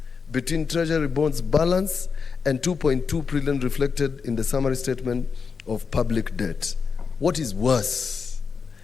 between Treasury bonds balance and 2.2 trillion reflected in the summary statement of public debt. What is worse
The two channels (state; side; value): quieter; right; 5.5 dB